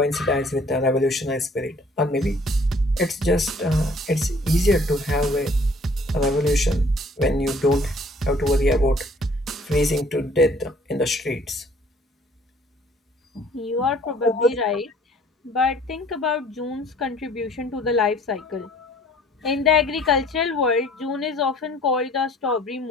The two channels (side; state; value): both; normal; correlation 0.56